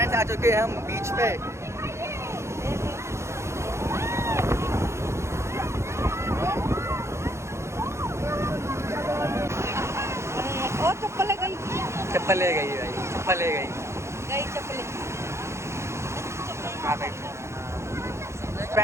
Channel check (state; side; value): late; left; 0.13 ms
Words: आ चुके हैं हम बीच पे। और चप्पल ले गई, चप्पल ले गई भाई, चप्पल ले गई। चप्पल हाँ भाई।